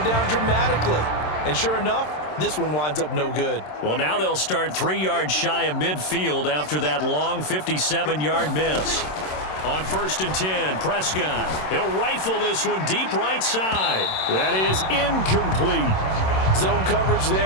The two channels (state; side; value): late; right; 27 ms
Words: down dramatically. And sure enough, this one winds up no good. Well, now they'll start 3 yards shy of midfield after that long 57-yard miss. On 1st and 10, Prescott. He'll rifle this one deep right side. That is incomplete. Zone coverage